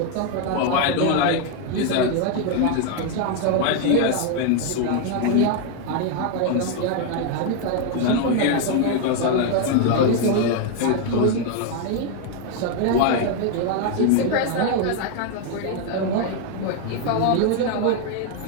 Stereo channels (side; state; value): both; different; correlation 0.01